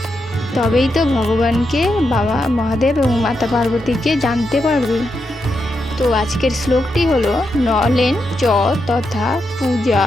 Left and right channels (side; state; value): both; normal; correlation 0.84